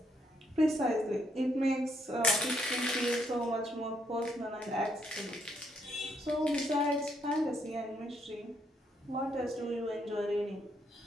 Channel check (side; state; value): both; normal; correlation 0.73